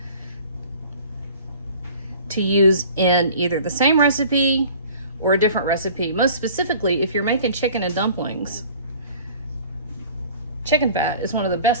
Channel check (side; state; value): both; inverted; correlation -0.47